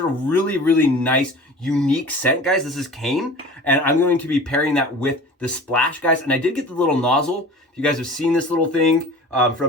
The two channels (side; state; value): both; normal; correlation 0.40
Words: really, really nice, unique scent, guys. This is Kane, and I'm going to be pairing that with the Splash, guys. And I did get the little nozzle. If you guys have seen this little thing